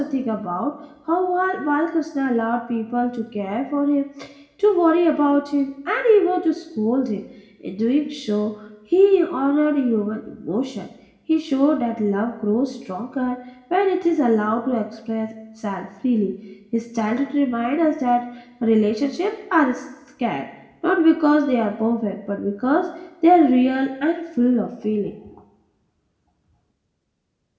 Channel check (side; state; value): both; identical; correlation 1.00